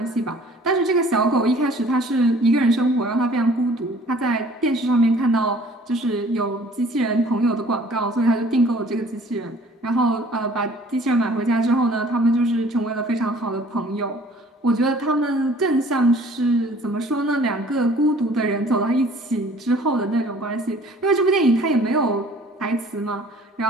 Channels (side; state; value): both; normal; correlation 0.53